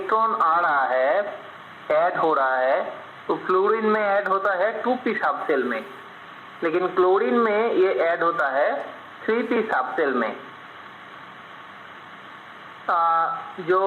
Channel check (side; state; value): both; identical; correlation 1.00